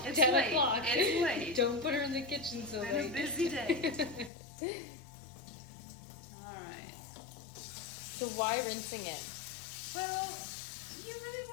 It's 10 late. o'clock. It's late. Don't put her in the kitchen so It's been a late. busy day. Alright. So why rinsing it? Well, you really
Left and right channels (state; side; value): drops out; right; at 4.3 s